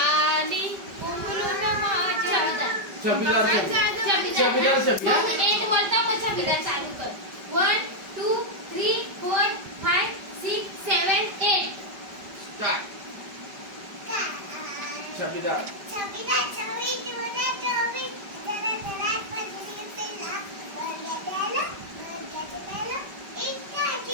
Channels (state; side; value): late; left; 5.1 ms